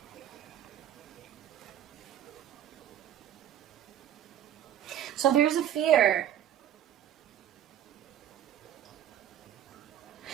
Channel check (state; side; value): quieter; left; 10.9 dB